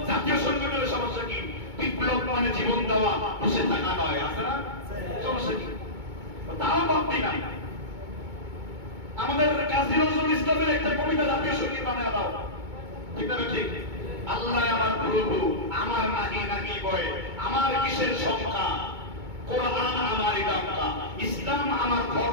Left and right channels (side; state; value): left; late; 2.2 ms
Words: জাতীয় সংগঠনের সমস্যা কি? বিপ্লব মানে জীবন দেওয়া, বসে থাকা নয়। আছে না? সমস্যা কি? তাও ভাববি না। আমাদের কাজী নজরুল ইসলামের একটা কবিতা জাতীয় সঙ্গীত বানায় দাও। ঠিক না? ঠিক। আল্লাহ আমার প্রভু, আমার নাহি নাহি বয়, আমার কিসের সংখ্যা, কোরআন আমার ইলাকা, ইসলাম আমার